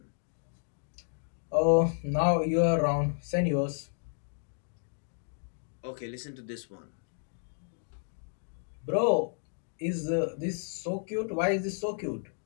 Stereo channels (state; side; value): silent; right; digital silence